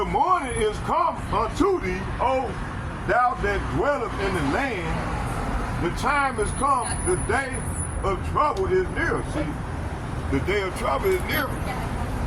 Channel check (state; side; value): identical; both; correlation 1.00